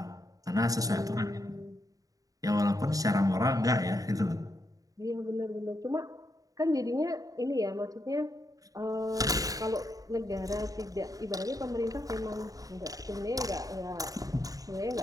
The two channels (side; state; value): left; late; 0.17 ms